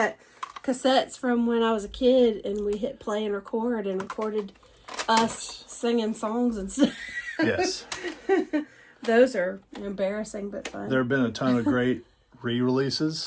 cassettes from when I was a kid, and we hit play and record, and recorded us singing songs and stuff. Yes. Those are embarrassing, but fun. There have been a ton of great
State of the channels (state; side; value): identical; both; correlation 1.00